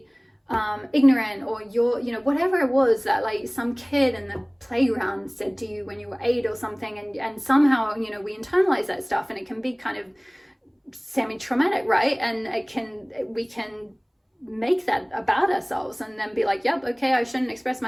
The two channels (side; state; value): both; identical; correlation 1.00